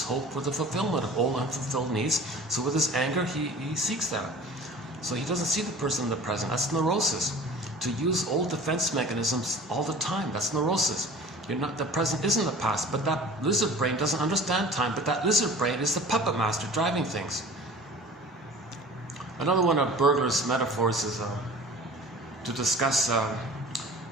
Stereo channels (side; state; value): both; normal; correlation 0.42